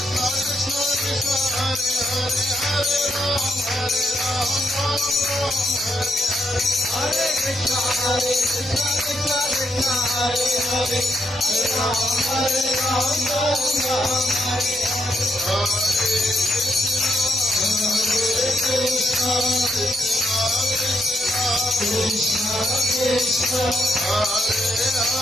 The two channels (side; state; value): both; normal; correlation 0.78